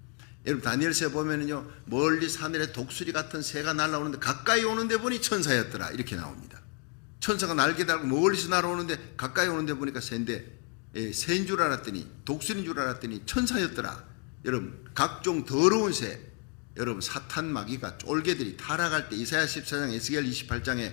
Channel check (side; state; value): right; quieter; 35.7 dB